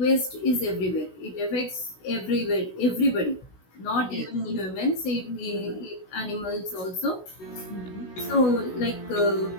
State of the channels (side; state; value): right; late; 16 ms